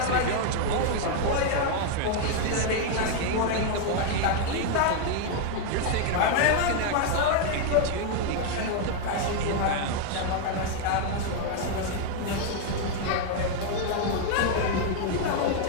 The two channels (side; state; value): both; different; correlation 0.00